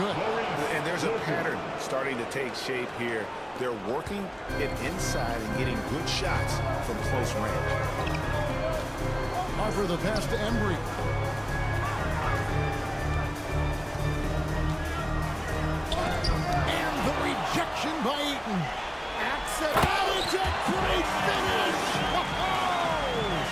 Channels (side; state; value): both; identical; correlation 1.00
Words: And there's a pattern starting to take shape here. They're working it inside and getting good shots from close range. Harper the pass to Embry. And the rejection by Eaton. Accidental. It's a great finish.